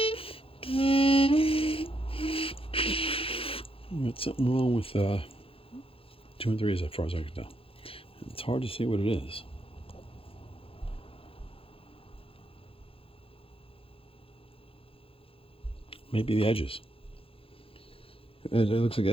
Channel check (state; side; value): late; right; 0.27 ms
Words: Got something wrong with 2 and 3 as far as I can tell. It's hard to see what it is. Maybe the edges. It looks like